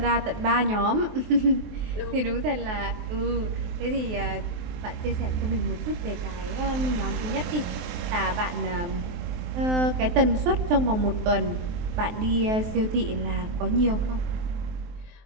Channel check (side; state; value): left; late; 23 ms